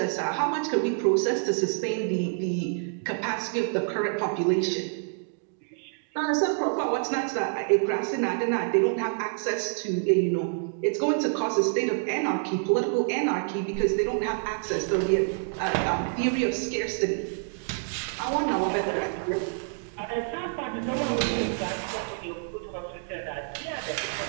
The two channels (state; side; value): silent; left; digital silence